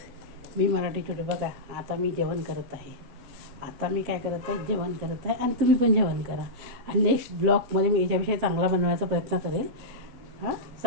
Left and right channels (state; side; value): late; left; 7.8 ms